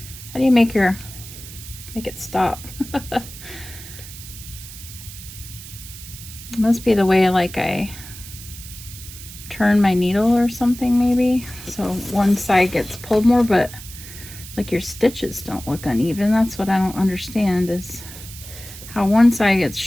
it stop? It must be the way like I turn my needle or something maybe. So one side gets pulled more, but like your stitches don't look uneven. That's what I don't understand, is how one side gets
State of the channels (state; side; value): noise; right; hiss, 14 dB below the sound